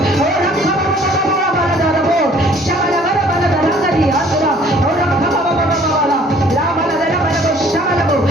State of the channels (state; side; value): normal; both; correlation 0.56